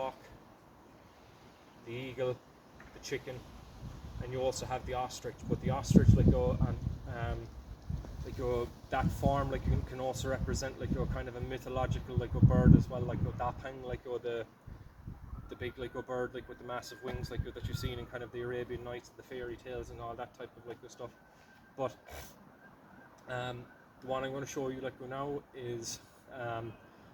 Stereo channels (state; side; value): identical; both; correlation 1.00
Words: the eagle, the chicken, and you also have the ostrich. But the ostrich that form like can also represent like kind of a mythological like a bird as well, like dapang, like the big like bird like with the massive wings like that you've seen in kind of the Arabian Nights and the fairy tales and all that type of like stuff. But the one I'm going to show you like now is